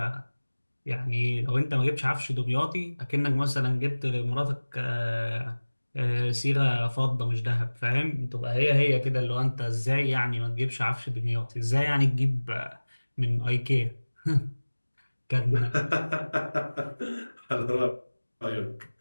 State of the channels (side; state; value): both; inverted; correlation -1.00